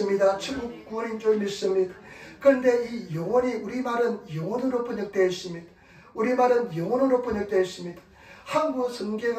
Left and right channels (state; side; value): identical; both; correlation 1.00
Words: 천국 구원인 줄 믿습니다. 그런데 이 영혼이, 우리말은 영혼으로 번역되어 있습니다. 우리말은 영혼으로 번역되어 있습니다. 한국